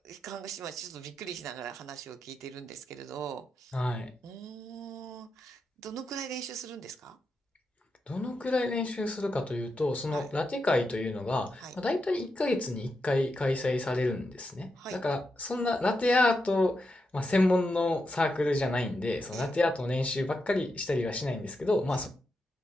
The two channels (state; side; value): normal; both; correlation 0.86